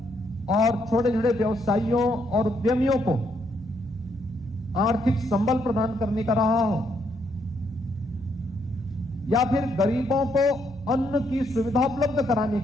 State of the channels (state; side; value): noise; right; hum, 20 dB below the sound